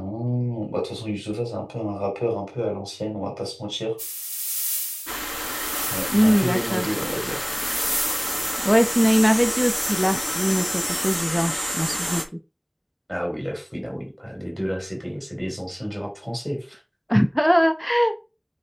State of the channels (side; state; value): both; identical; correlation 1.00